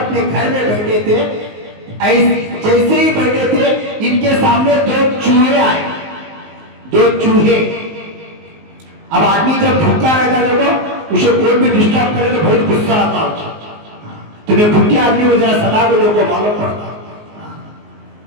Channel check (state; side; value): late; left; 19 ms